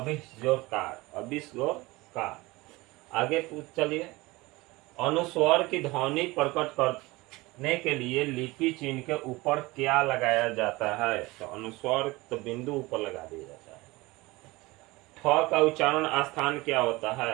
आगे चलिए। अनुस्वर की ध्वनि प्रकट करने के लिए लिपि चिन्ह के ऊपर क्या लगाया जाता है? तो अनुस्वर तो बिंदु ऊपर लगा दिया जाता है। ठ का उच्चारण स्थान क्या होता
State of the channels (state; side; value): quieter; left; 21.7 dB